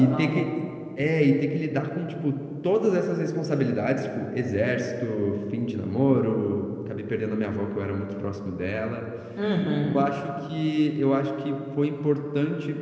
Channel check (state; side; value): identical; both; correlation 1.00